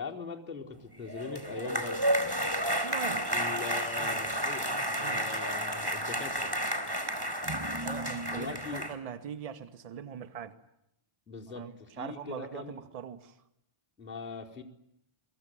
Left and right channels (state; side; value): late; left; 1.1 ms